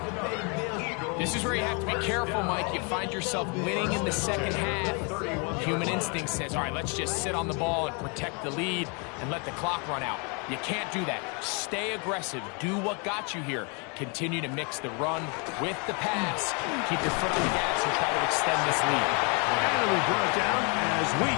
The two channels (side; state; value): right; quieter; 34.1 dB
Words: This is where you have to be careful, Mike. You find yourself winning in the second half. Human instinct says, all right, let's just sit on the ball and protect the lead and let the clock run out. You can't do that. Stay aggressive. Do what got you here. Continue to mix the run with the pass. Keep your foot on the gas and try to extend this lead. And we brought down as we